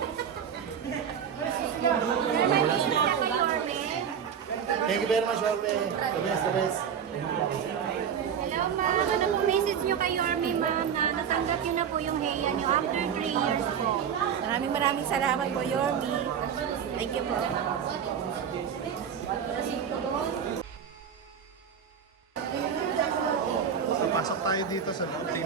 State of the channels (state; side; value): quieter; left; 7.9 dB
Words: Thank you very much, Jorme. The best, the best. Hello ma'am, ano po message niyo kay Yorme ma'am na natanggap niyo na po yung heya niyo after 3 years po? Maraming salamat po, Yorme. Thank you po. So, pasok tayo dito sa loob.